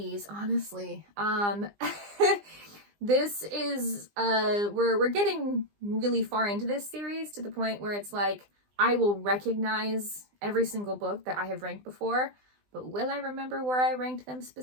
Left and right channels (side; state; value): left; late; 20 ms